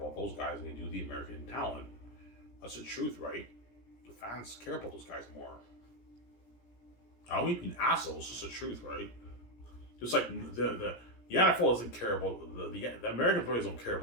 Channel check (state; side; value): late; right; 17 ms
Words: those guys than they do the American talent. That's the truth, right? The fans care about those guys more. I don't mean being assholes, it's just the truth, right? Just like the NFL doesn't care about the American players don't care